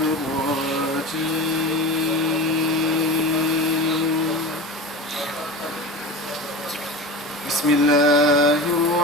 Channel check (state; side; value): normal; both; correlation 0.30